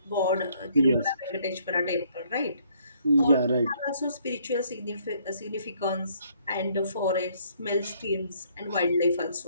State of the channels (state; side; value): inverted; both; correlation -0.66